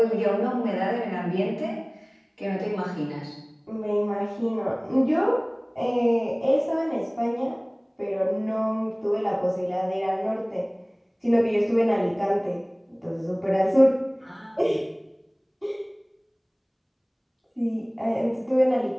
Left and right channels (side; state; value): both; identical; correlation 1.00